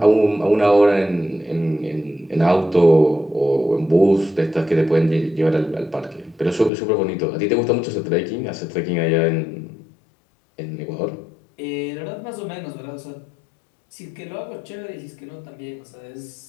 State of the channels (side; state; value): right; drops out; at 6.7 s